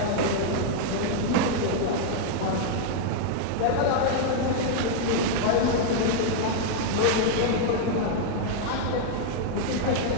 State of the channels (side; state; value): both; different; correlation 0.00